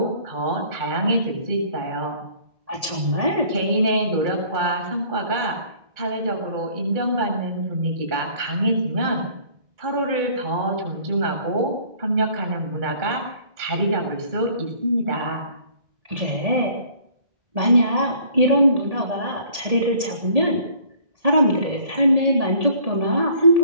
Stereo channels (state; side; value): late; left; 1.8 ms